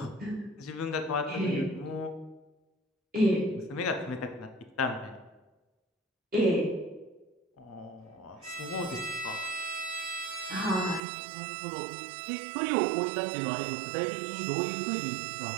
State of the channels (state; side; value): drops out; left; at 11.0 s